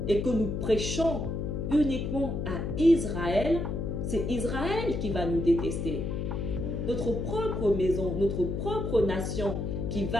et que nous prêchons uniquement à Israël, c'est Israël qui va nous détester. Notre propre maison, notre propre nation qui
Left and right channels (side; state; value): left; noise; hum, 2 dB below the sound